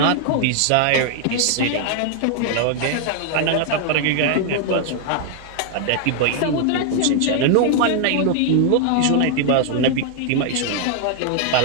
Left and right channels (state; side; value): different; both; correlation 0.00